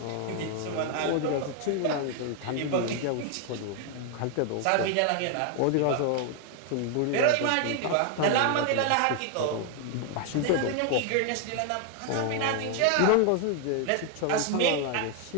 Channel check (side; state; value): both; different; correlation 0.00